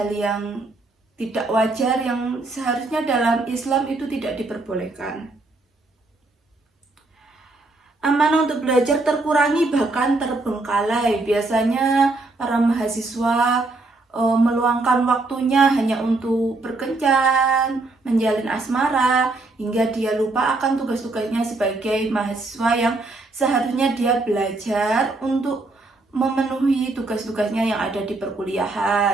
yang tidak wajar yang seharusnya dalam Islam itu tidak diperbolehkan. Amanah untuk belajar terkurangi bahkan terbengkalai. Biasanya para mahasiswa meluangkan waktunya hanya untuk berkencan, menjalin asmara, hingga dia lupa akan tugas-tugasnya sebagai mahasiswa yang seharusnya dia belajar untuk memenuhi tugas-tugasnya yang ada di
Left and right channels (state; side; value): quieter; left; 3.2 dB